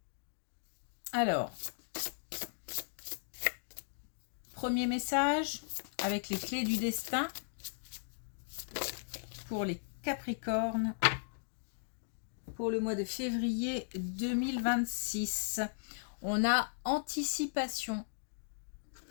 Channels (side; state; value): right; silent; digital silence